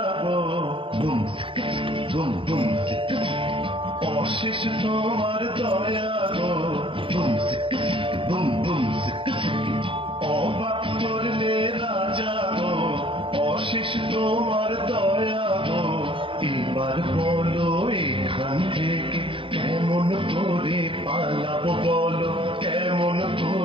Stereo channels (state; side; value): late; left; 0.25 ms